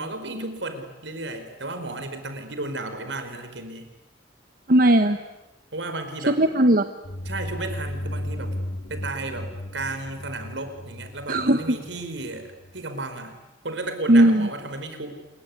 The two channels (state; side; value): normal; both; correlation 0.53